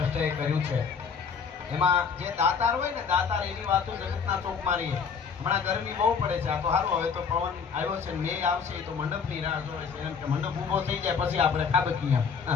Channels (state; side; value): quieter; right; 6.0 dB